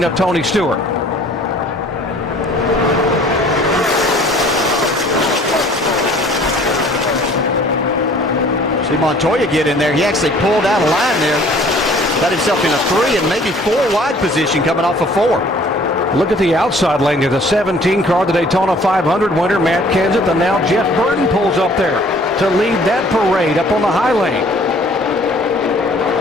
of Tony Stewart. See Montoya get in there. He actually pulled out a line there. Got himself in a 3 and maybe 4 wide position coming off of 4. Look at the outside lane. There's a 17 car, the Daytona 500 winner, Matt Kenseth, and now Jeff Burton pulls up there to lead that parade up on the high lane.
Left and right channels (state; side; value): normal; both; correlation 0.54